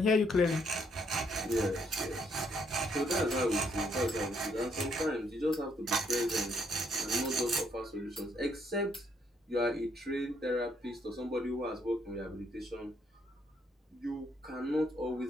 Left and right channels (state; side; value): normal; both; correlation 0.71